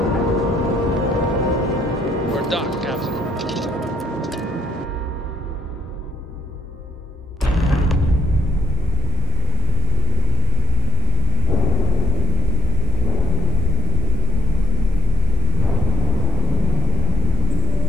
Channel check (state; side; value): normal; both; correlation 0.66